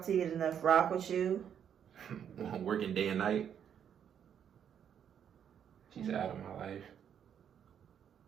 Till You Get Enough. Rock With You. Working day and night. She's out of my life.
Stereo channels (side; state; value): left; quieter; 8.6 dB